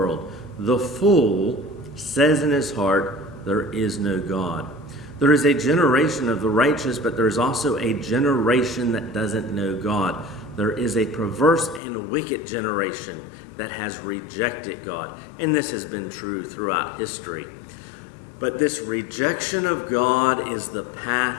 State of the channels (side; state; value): right; drops out; at 11.8 s